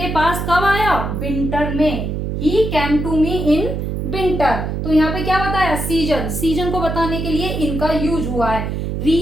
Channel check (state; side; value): noise; right; hum, 3 dB below the sound